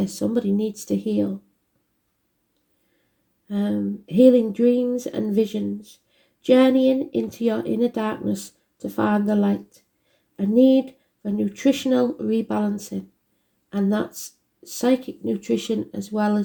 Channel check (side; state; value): both; identical; correlation 1.00